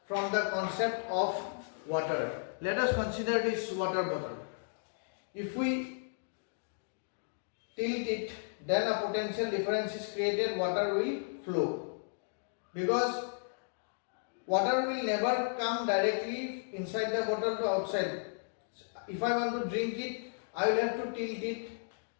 from the concept of water. Let us consider this water bottle. If we tilt it, then a potential difference is created, water will flow. Because water will never come directly inside the bottle to outside. If I want to drink it, I will have to tilt it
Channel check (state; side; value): silent; right; digital silence